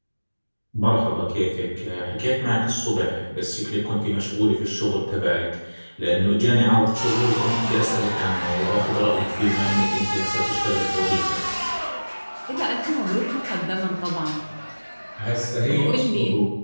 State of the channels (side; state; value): both; inverted; correlation -1.00